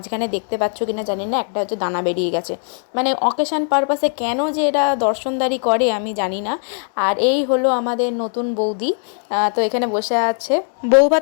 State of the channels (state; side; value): silent; right; 57 dB below the other